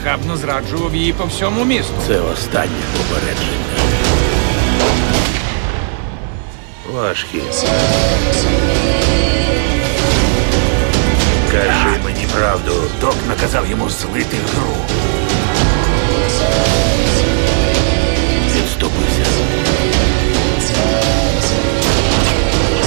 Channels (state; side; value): silent; left; digital silence